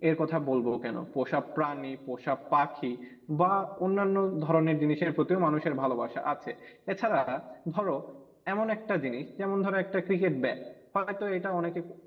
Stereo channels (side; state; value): both; identical; correlation 1.00